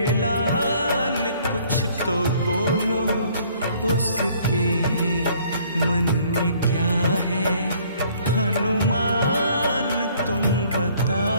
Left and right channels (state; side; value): inverted; both; correlation -0.60